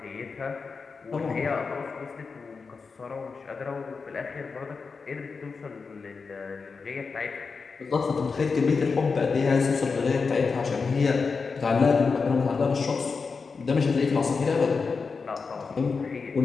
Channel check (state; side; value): quieter; right; 4.9 dB